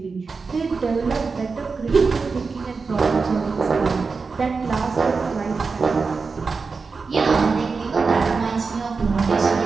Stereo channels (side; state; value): left; quieter; 4.6 dB